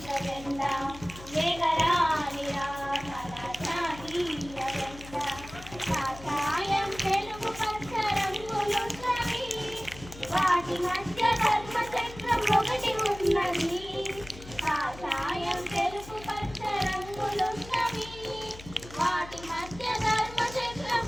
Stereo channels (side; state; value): left; noise; hum, 16 dB below the sound